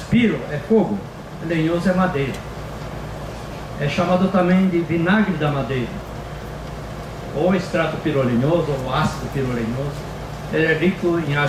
é fogo, lenhoso é madeira. É chamado também de vinagre da madeira, ou extrato pirolenhoso, ou ácido pirolenhoso. Ele é rico em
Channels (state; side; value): identical; both; correlation 1.00